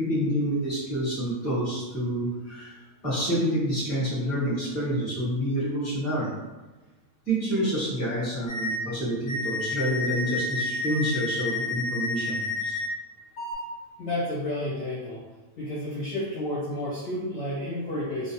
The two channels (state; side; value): late; right; 9.0 ms